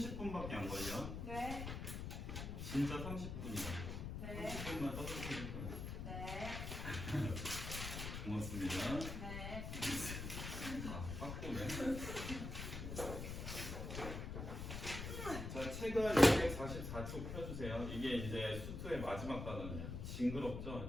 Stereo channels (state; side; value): noise; left; rumble, 5 dB below the sound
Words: 안 걸려. 네. 진짜 30분이야. 네. 30분만 떠들니까. 네. 고맙습니다. 네. 아, 빡고네. 자, 체가 244쪽 펴주세요. 이게 이제 수투의 마지막 단원이야.